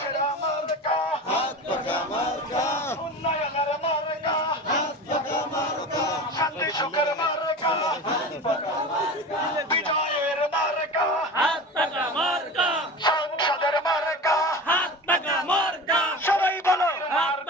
মার্কা উন্নয়নের মার্কা শান্তি সুখের মার্কা বিজয়ের মার্কা সংসদের মার্কা সবাই বলো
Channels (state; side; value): normal; both; correlation 0.31